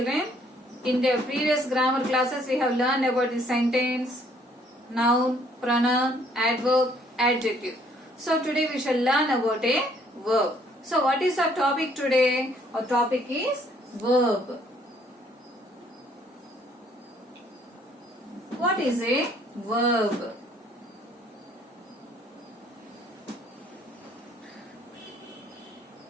In the previous grammar classes, we have learned about the sentence, noun, pronoun, adverb, adjective. So today we shall learn about a verb. So what is our topic today? Our topic is verb. What is a verb?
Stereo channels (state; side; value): normal; both; correlation 0.64